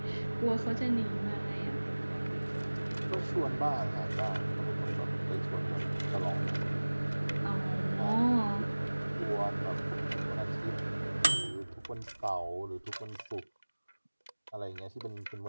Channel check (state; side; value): inverted; both; correlation -1.00